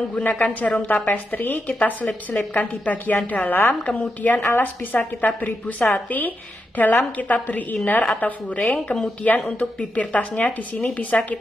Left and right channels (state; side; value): normal; both; correlation 0.86